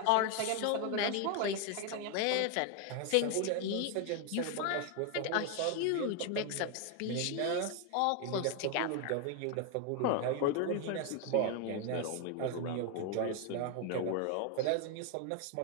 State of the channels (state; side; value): different; both; correlation 0.01